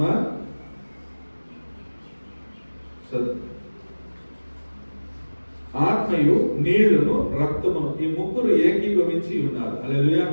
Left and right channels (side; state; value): both; inverted; correlation -1.00